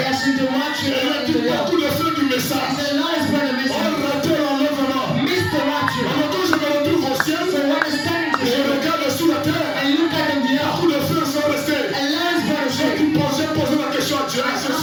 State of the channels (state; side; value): identical; both; correlation 1.00